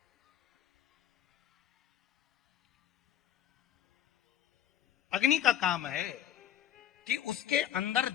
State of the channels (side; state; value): right; quieter; 11.1 dB